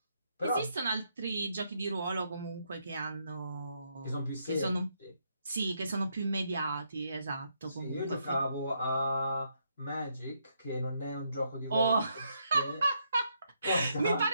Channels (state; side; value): inverted; both; correlation -0.77